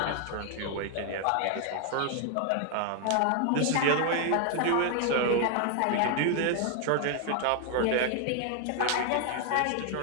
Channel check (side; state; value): both; different; correlation 0.00